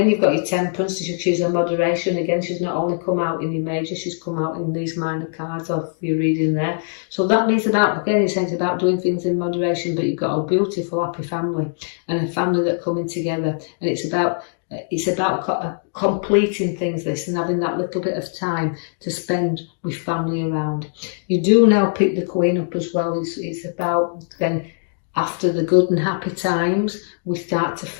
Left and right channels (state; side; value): silent; right; digital silence